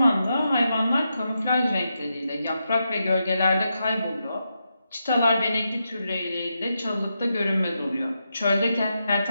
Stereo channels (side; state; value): both; inverted; correlation -0.85